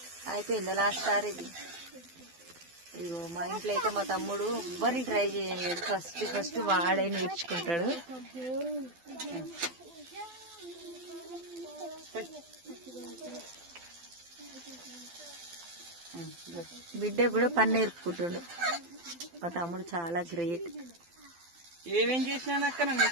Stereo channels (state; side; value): late; left; 12 ms